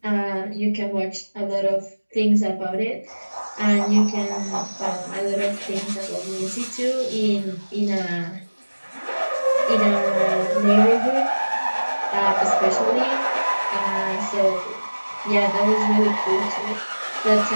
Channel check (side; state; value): both; inverted; correlation -1.00